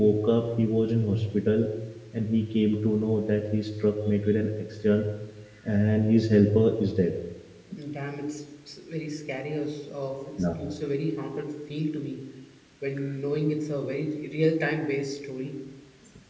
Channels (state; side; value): identical; both; correlation 1.00